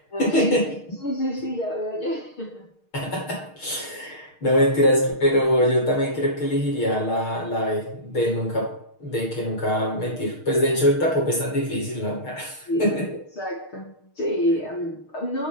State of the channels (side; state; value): right; late; 6.5 ms